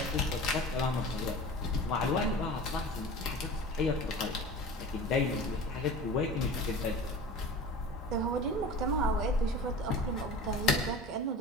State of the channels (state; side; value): normal; both; correlation 0.37